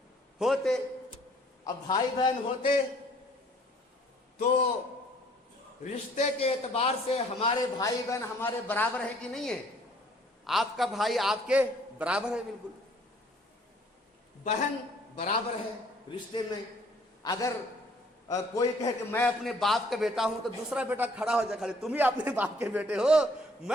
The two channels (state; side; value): normal; both; correlation 0.59